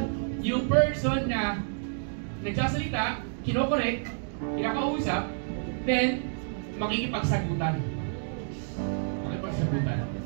yung person na nagsasalita, kinokorek, kinakausap, then makikipagsagutan.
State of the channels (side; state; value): left; silent; digital silence